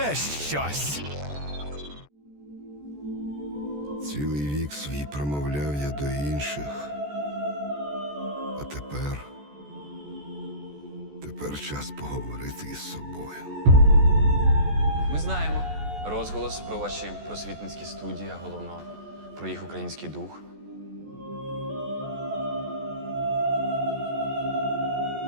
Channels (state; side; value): late; left; 14 ms